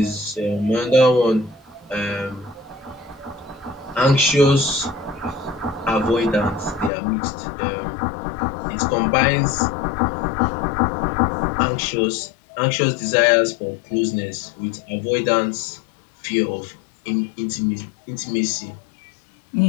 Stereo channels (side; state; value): right; drops out; at 6.9 s